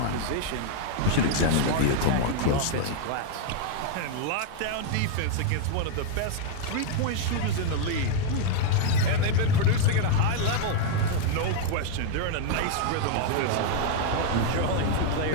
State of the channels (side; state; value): both; different; correlation 0.00